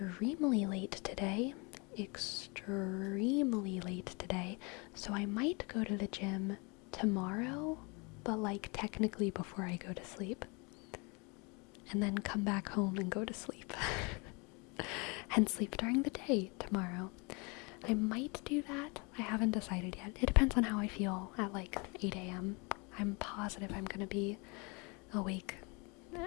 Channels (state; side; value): quieter; right; 30.1 dB